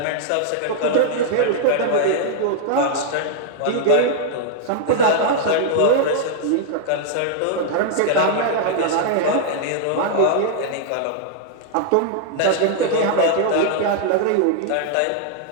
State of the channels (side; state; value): both; different; correlation -0.01